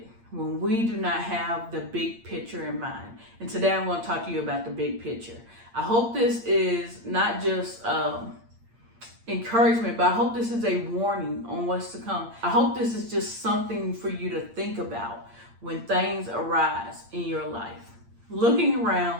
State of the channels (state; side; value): late; left; 8.7 ms